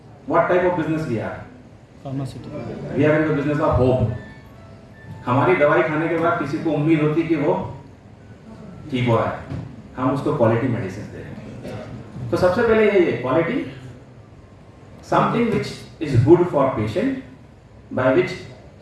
what type of business we are. Pharmaceutical. We are in the business of hope. हमारी दवाई खाने के बाद किसी को उम्मीद होती कि वो ठीक हो रहा है, हम उसको क्वालिटी मेडिसिन दे रहे हैं। तो सबसे पहले यही है quality, something which is good for patient, by which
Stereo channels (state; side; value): identical; both; correlation 1.00